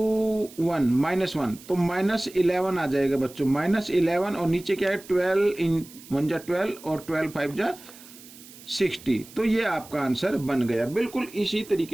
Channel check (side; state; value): right; noise; hiss, 20 dB below the sound